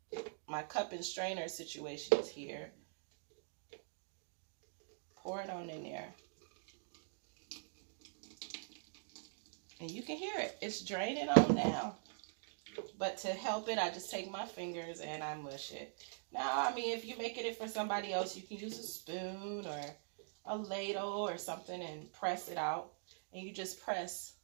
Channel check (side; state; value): left; silent; digital silence